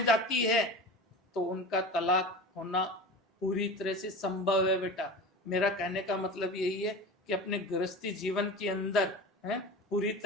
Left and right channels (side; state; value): both; normal; correlation 0.32